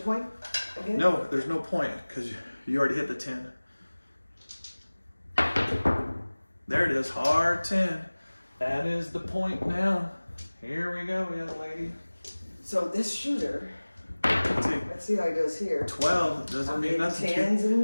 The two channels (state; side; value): inverted; both; correlation -1.00